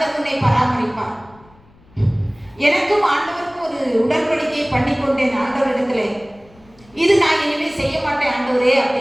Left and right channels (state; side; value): noise; left; rumble, 28 dB below the sound